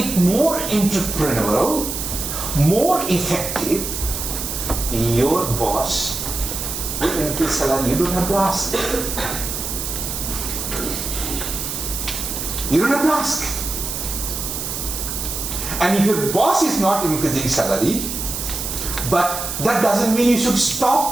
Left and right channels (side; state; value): right; noise; hiss, 4 dB below the sound